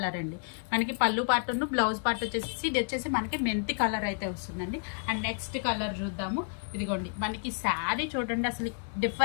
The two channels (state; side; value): silent; right; 57 dB below the other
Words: అండి. మనకి పళ్ళు పార్ట్ బ్లౌజ్ పార్ట్ వచ్చేసి ఇది వచ్చేసి మనకి మెంతి కలర్ అయితే వస్తుందండి. అండ్ నెక్స్ట్ కలర్ చూద్దాము. ఇదిగోండి మనకి శారీ చూడండి అసలు